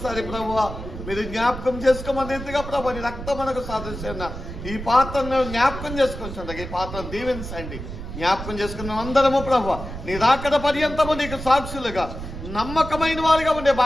ప్రభువా మీరు జ్ఞాపకం చేసుకోమని ఎంతగా ప్రభు నీ రక్తమునకు సాదృశ్యం ఈ పాత్రను జ్ఞాపకం చేసుకుంటుండగా ఈ పాత్రను దీవించండి. జ్ఞాపకం చేసుకున్న అందరము ప్రభు నీ రాకడ పర్యంతము నీకు సాక్షులుగా నమ్మకమైన వారిగా ఉండే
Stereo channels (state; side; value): noise; right; rumble, 9 dB below the sound